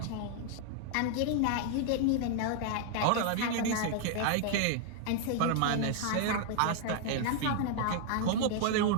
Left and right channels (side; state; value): both; different; correlation 0.00